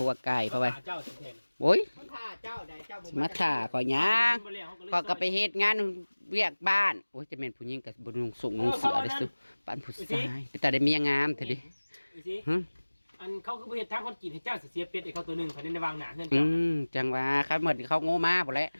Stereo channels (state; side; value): inverted; both; correlation -1.00